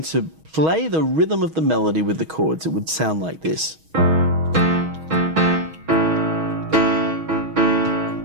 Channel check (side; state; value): left; late; 6.3 ms